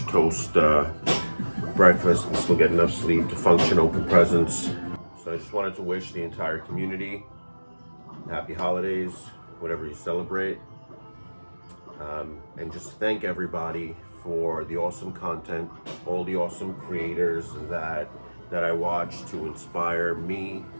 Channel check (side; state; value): both; inverted; correlation -1.00